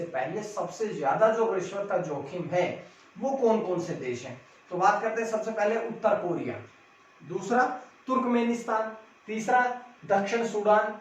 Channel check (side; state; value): both; identical; correlation 1.00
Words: पहले सबसे ज्यादा जो रिश्वत का जोखिम है वो कौन कौन से देश हैं। तो बात करते हैं सबसे पहले उत्तर कोरिया, दूसरा तुर्कमेनिस्तान, तीसरा दक्षिण सूडान,